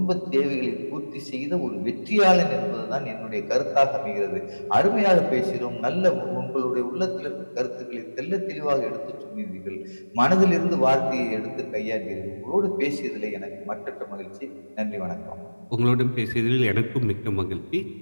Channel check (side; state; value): both; inverted; correlation -1.00